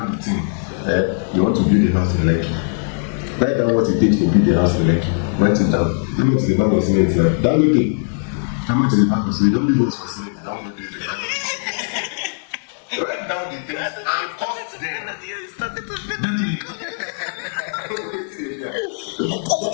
the thing, you want to build a house in Lekki. Write down what it takes to build a house in Lekki. Write it down. How much is the bag of cement now? That okay. How much is the bag of cement? Don't leave us for cement. Don't do it. Write down the things and cost them.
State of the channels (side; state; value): right; silent; digital silence